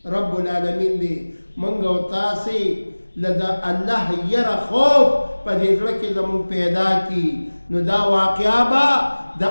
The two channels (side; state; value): both; inverted; correlation -1.00